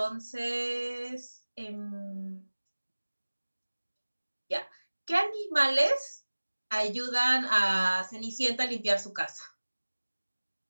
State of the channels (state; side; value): inverted; both; correlation -1.00